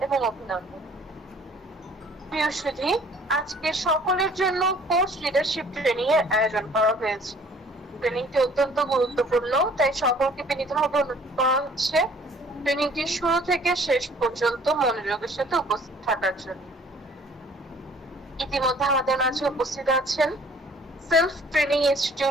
এবং অভিনন্দন। প্রিয় সুধী, আজকে সকলের জন্য কোর্স লিডারশিপ ট্রেনিং এর আয়োজন করা হয়েছে। ট্রেনিংটি অত্যন্ত গুরুত্বপূর্ণ, তাই সকলকে বিনীতভাবে অনুরোধ করা হচ্ছে ট্রেনিংটি শুরু থেকে শেষ পর্যন্ত মনোযোগের সাথে উপস্থিত থাকার জন্য। ইতিমধ্যে আমাদের মাঝে উপস্থিত আছেন সেলফ ট্রেনিং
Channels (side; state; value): both; normal; correlation 0.55